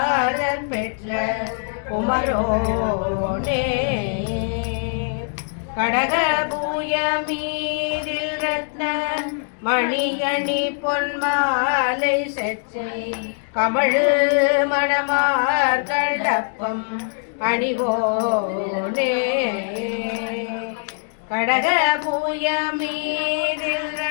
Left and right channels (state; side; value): silent; right; digital silence